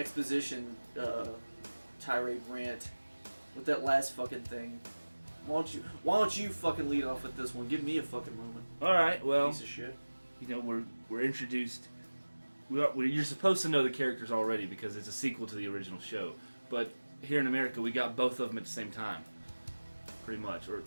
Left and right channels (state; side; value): inverted; both; correlation -1.00